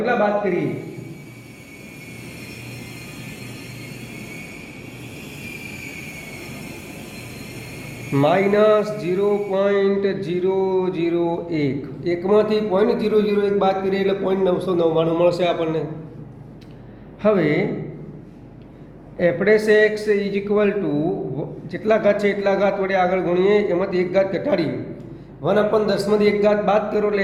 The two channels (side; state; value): both; identical; correlation 1.00